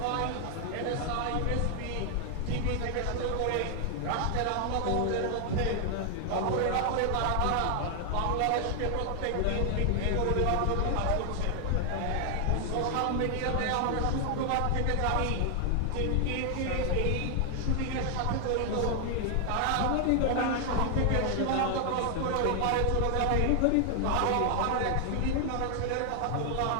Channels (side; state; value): both; different; correlation 0.00